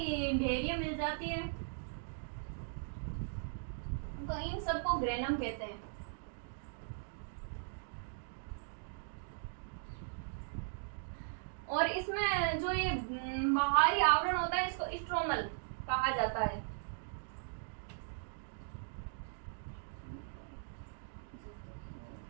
डेयरियां मिल जाती है तो इन सबको ग्रेनम कहते हैं। और इसमें जो ये बाहरी आवरण होता है इसको स्ट्रोमल कहा जाता है।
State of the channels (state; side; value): silent; left; digital silence